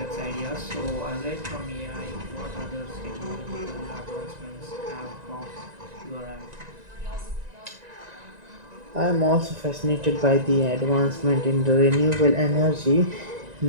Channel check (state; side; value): late; left; 1.9 ms